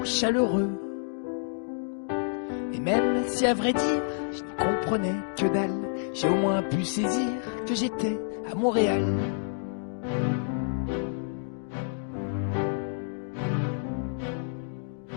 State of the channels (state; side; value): silent; right; digital silence